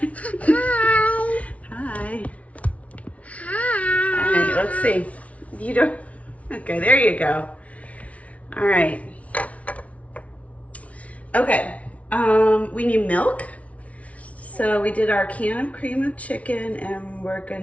Hi. Hi. Hi. All right, let's see. You don't, okay, there you go. All right. Okay, we need milk. So we did our can of cream of chicken and we're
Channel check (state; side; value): late; right; 0.066 ms